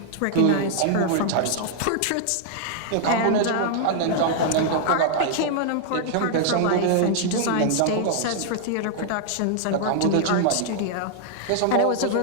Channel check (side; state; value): both; different; correlation -0.01